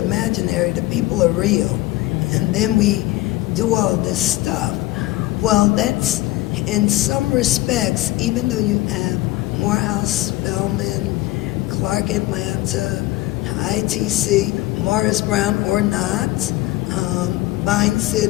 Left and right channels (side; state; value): right; quieter; 17.9 dB